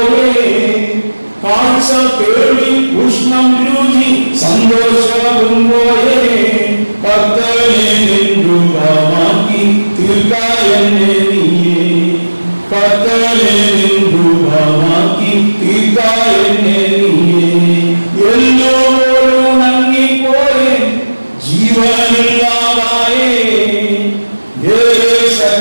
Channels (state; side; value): inverted; both; correlation -1.00